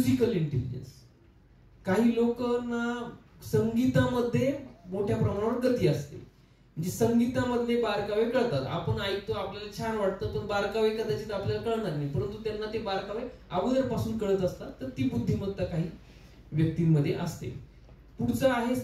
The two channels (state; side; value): identical; both; correlation 1.00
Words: इंटेलिजन्स. काही लोकांना संगीतामध्ये मोठ्या प्रमाणावर गती असते, म्हणजे संगीतामधले बारकावे कळतात. आपण ऐकतो, आपल्याला छान वाटतं, पण बारकावे कदाचित आपल्याला कळणार नाही, परंतु त्यांना ते बारकावे अगोदरपासून कळत असतात. तर ती बुद्धिमत्ता काही व्यक्तींमध्ये असते. पुढचं आहे